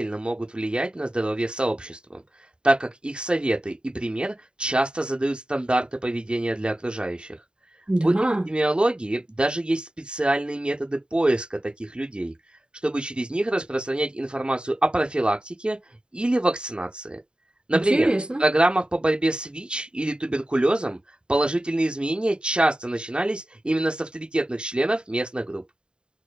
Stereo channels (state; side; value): late; left; 0.049 ms